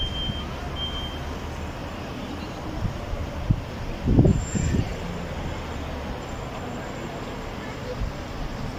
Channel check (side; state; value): both; identical; correlation 1.00